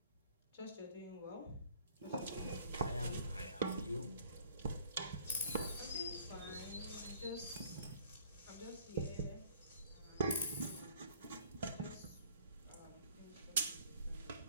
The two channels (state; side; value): inverted; both; correlation -0.56